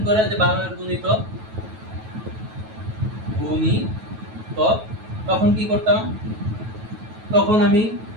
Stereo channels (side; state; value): left; late; 9.2 ms